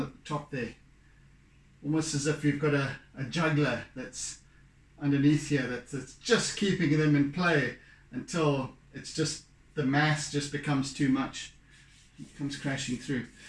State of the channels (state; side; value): identical; both; correlation 1.00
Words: at the top there. Almost as if you've got a juggler that's underneath here that's just keeping them in play until it's just, the mass just becomes too much. It comes crashing through.